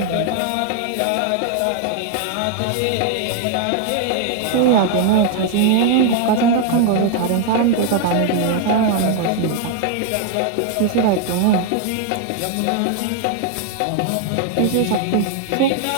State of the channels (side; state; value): both; different; correlation 0.00